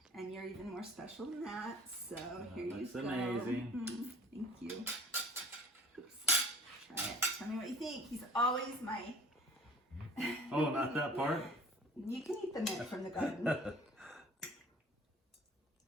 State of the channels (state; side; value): normal; both; correlation 0.49